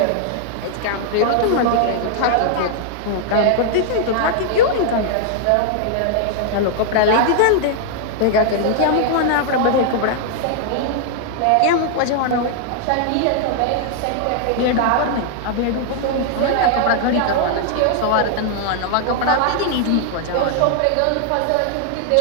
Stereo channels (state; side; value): different; both; correlation -0.01